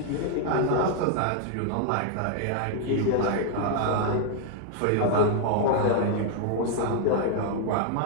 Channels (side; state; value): both; different; correlation 0.00